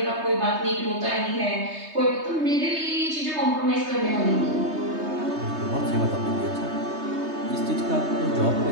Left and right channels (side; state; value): left; late; 3.2 ms